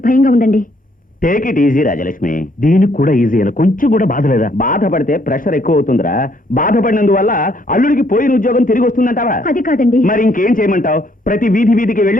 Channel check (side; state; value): both; normal; correlation 0.68